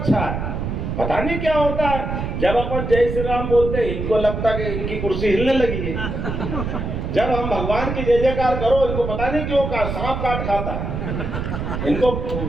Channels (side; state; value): right; noise; rumble, 3 dB below the sound